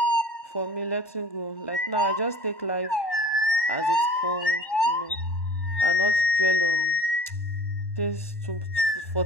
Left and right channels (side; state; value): right; late; 1.1 ms